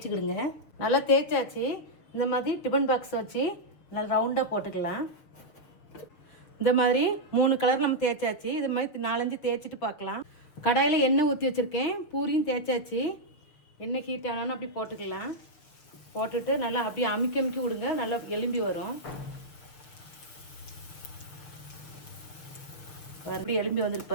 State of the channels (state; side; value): late; right; 6.7 ms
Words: நல்லா தேய்ச்சாச்சு. இந்த மாதிரி டிஃபன் பாக்ஸ் வச்சு நல்லா ரவுண்டாக போட்டுக்கலாம். இந்த மாதிரி 3 கலர் நம்ம தேய்ச்சாச்சு. இது மாதிரி 4-5 தேய்ச்சிட்டு பார்க்கலாம். கடாயில் எண்ணெய் ஊற்றி வச்சுருக்கேன். பூரியும் தேய்ச்சாச்சு. எண்ணெய் ஹீட் ஆனாலும் அப்படி போட்டுக்கலாம். போட்டுட்டு நல்லா அப்படியே அமுக்கி விடுங்க, நல்லா எலும்பி வரும். அப்படி எலும்பி